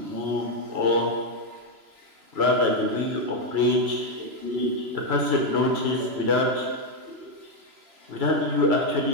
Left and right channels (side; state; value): left; late; 3.0 ms